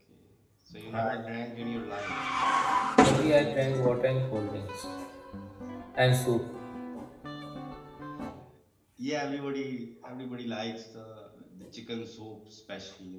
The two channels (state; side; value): identical; both; correlation 1.00